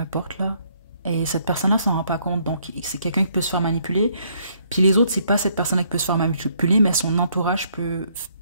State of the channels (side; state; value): both; inverted; correlation -0.68